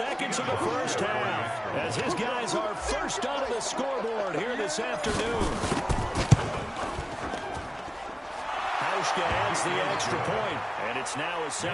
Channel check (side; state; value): both; identical; correlation 1.00